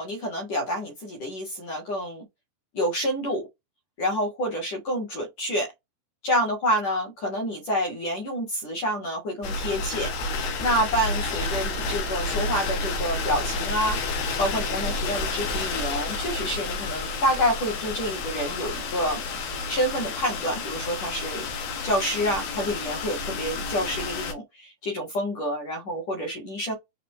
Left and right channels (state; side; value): late; right; 10 ms